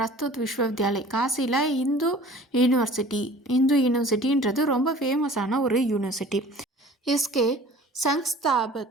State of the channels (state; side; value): normal; both; correlation 0.46